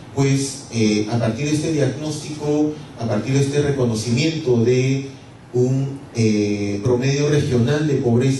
pues a partir de este diagnóstico, a partir de este reconocimiento de un promedio regional de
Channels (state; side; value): identical; both; correlation 1.00